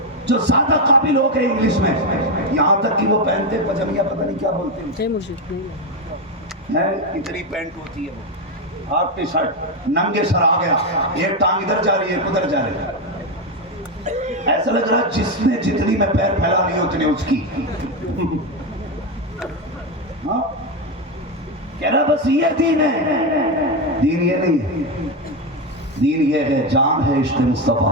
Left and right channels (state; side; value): normal; both; correlation 0.09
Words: جو زیادہ قابل ہو گئے انگلش میں، یہاں تک کہ وہ پہنتے پجامیہ پتہ نہیں کیا بولتے ہیں، اتنی پینٹ ہوتی ہے، وہ ہاف ٹی شرٹ، ننگے سر آ گیا، ایک ٹانگ ادھر جا رہی ہے ادھر جا رہی ہے، ایسا لگ رہا جس نے جتنی میں پیر پھیلا نہیں اتنے اس کی، ہاں کہہ رہا بس یہ دین ہے۔ دین یہ نہیں ہے، دین یہ ہے، جان ہے عشق